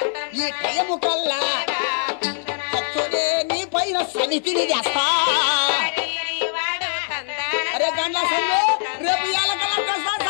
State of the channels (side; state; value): right; silent; 64 dB below the other